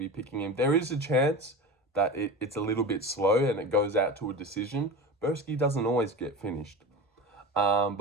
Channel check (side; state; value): both; normal; correlation 0.29